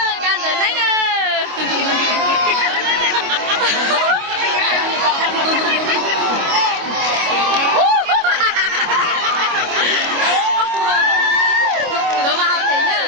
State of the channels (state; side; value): late; left; 25 ms